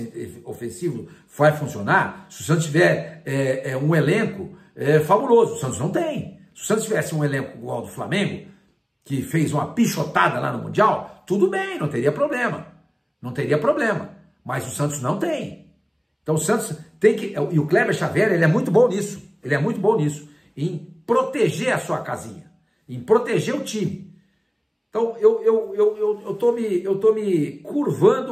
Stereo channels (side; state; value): both; identical; correlation 1.00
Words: ofensivo vai funcionar se o Santos tiver um elenco fabuloso. O Santos não tem. Se o Santos tivesse um elenco igual ao do Flamengo, que fez uma pichotada lá no Mundial, tudo bem, não teria problema. Não teria problema. Mas o Santos não tem. Então o Santos tem que... E o Kleber Xavier, ele é muito bom nisso. Ele é muito bom nisso. Em proteger a sua casinha. Em proteger o time. Então eu tô me